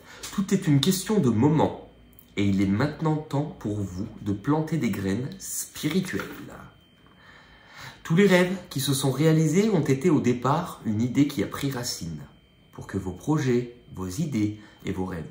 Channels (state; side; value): identical; both; correlation 1.00